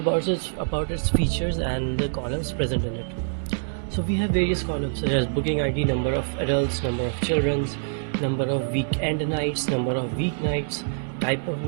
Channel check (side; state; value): left; silent; 62 dB below the other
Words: its features and the columns present in it. So we have various columns such as booking ID, number of adults, number of children, number of weekend nights, number of weeknights, type of